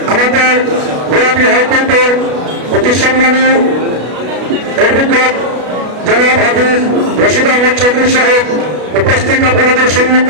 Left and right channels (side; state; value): left; late; 33 ms